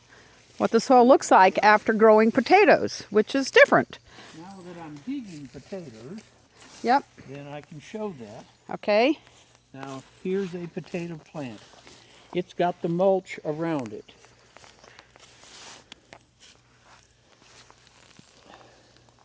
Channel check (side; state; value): both; identical; correlation 1.00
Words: the soil looks like after growing potatoes, which is different. Now that I'm digging potatoes, yep, then I can show that. Okay. Now, here's a potato plant. It's got the mulch around it.